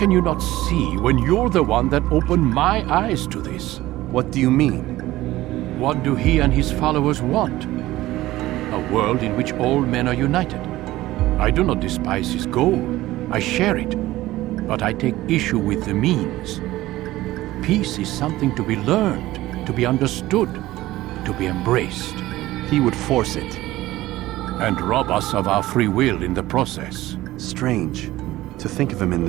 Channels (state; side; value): quieter; left; 16.6 dB